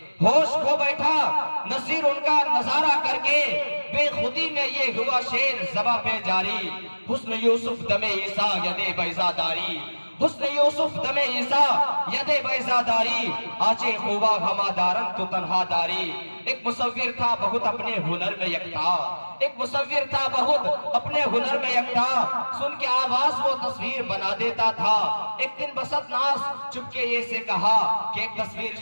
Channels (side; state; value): both; inverted; correlation -1.00